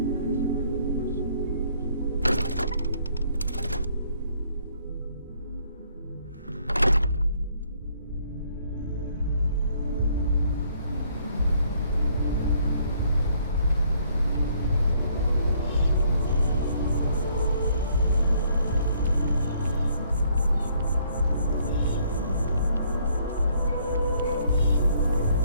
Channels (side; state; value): both; inverted; correlation -0.65